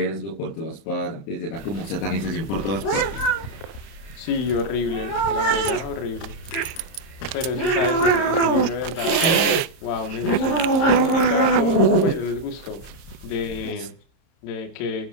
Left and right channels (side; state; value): right; late; 31 ms